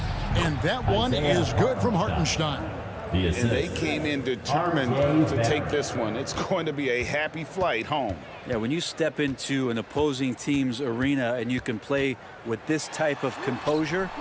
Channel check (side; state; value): both; identical; correlation 1.00